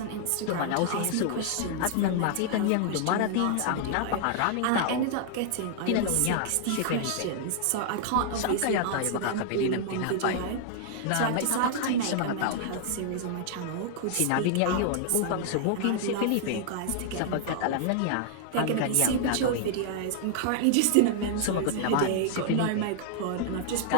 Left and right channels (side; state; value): both; different; correlation -0.01